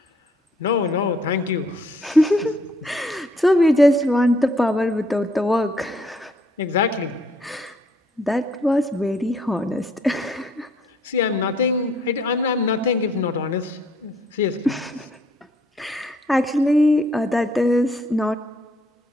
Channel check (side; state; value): both; normal; correlation 0.65